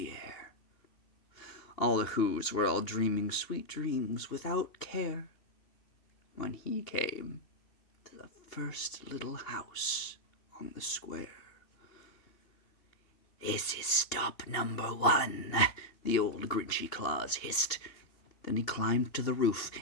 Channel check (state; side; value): late; right; 2.9 ms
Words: air. All the Whos were all dreaming sweet dreams without care, when he came to the first little house on the square. "This is stop number 1, the old Grinchy Claus hissed. Then he climbed to the roof,